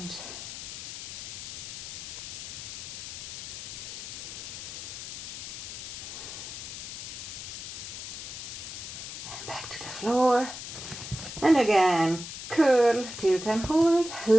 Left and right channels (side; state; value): left; noise; hiss, 8 dB below the sound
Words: And back to the floor. And again, curl, tilt and hold.